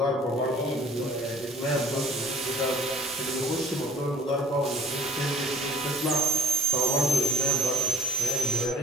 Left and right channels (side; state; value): both; normal; correlation 0.51